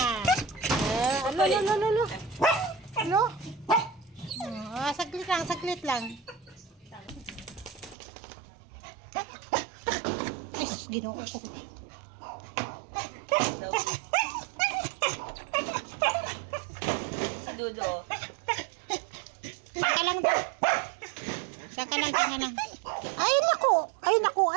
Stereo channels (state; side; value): drops out; left; at 8.0 s